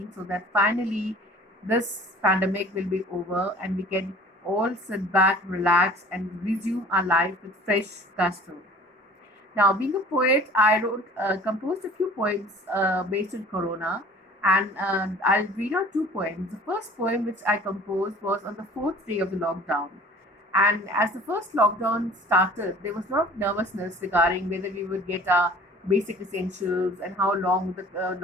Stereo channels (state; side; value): normal; both; correlation 0.48